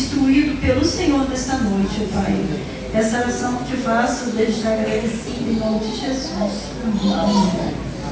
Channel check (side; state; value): both; identical; correlation 1.00